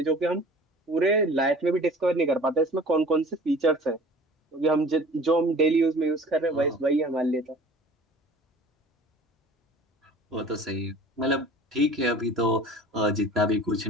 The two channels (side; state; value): both; normal; correlation 0.45